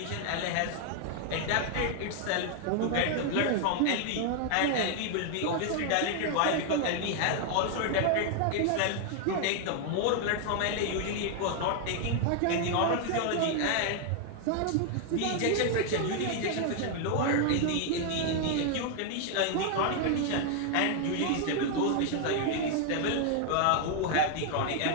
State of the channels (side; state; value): both; different; correlation 0.00